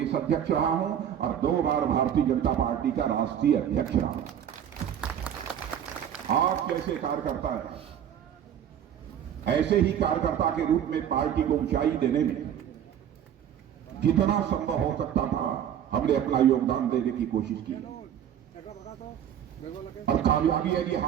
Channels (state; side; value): quieter; left; 9.6 dB